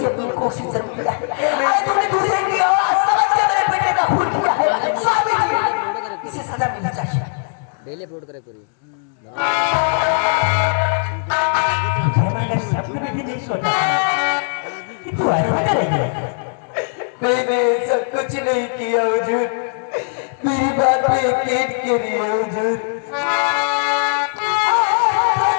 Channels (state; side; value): silent; right; 64 dB below the other